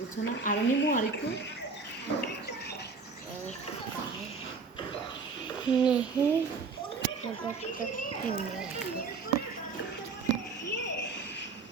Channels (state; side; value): quieter; left; 4.6 dB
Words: না আর নিমু আর একটু नहीं